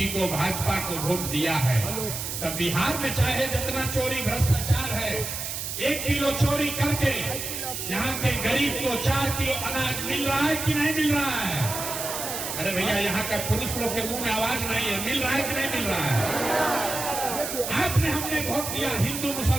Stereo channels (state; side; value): noise; right; hiss, 5 dB below the sound